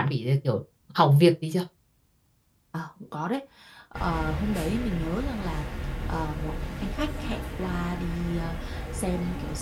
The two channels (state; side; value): identical; both; correlation 1.00